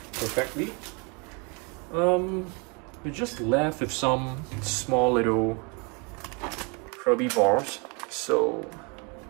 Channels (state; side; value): quieter; left; 32.4 dB